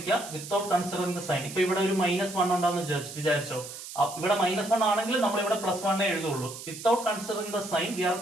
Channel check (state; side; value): noise; right; hiss, 12 dB below the sound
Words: വിത്തൗട്ട് കൺസിഡറിംഗ് ദ സൈൻ. ഇപ്പൊ ഇവിടെ ഒരു -1 ഉണ്ടാന്ന് വിചാരിച്ചോ, ഇവിടെ -1 ആണെങ്കിൽ നമ്മൾ ഇവിടെ +1 എഴുതുള്ളൂ. Without considering the sign we are